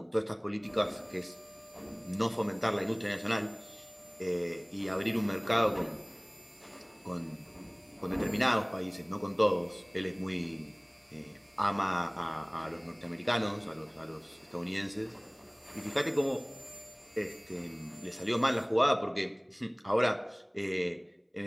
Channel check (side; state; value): both; identical; correlation 1.00